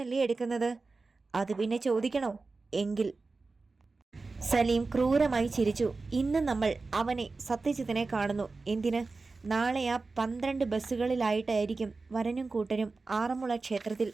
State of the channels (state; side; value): quieter; left; 3.9 dB